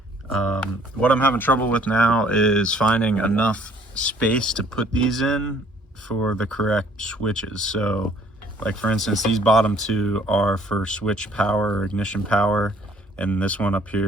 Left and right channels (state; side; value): normal; both; correlation 0.59